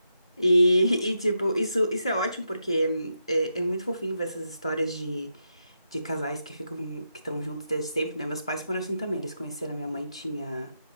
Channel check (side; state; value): both; inverted; correlation -0.84